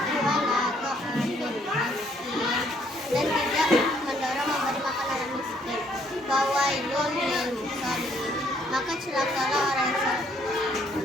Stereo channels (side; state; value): both; normal; correlation 0.67